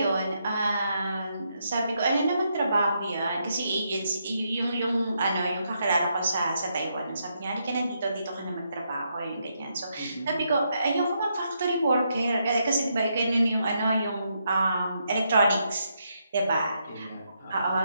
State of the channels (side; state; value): both; inverted; correlation -0.79